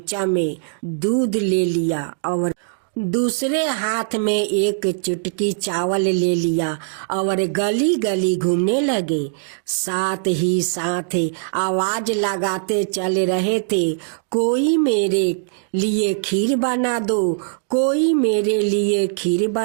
में दूध ले लिया और दूसरे हाथ में एक चुटकी चावल ले लिया और गली गली घूमने लगे। साथ ही साथ आवाज लगाते चल रहे थे, कोई मेरे लिए खीर बना दो, कोई मेरे लिए खीर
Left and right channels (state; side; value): silent; left; digital silence